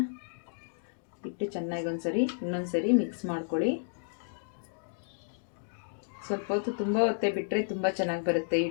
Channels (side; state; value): right; silent; digital silence